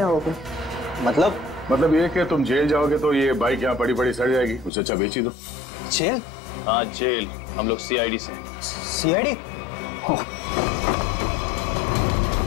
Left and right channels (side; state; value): right; drops out; at 4.7 s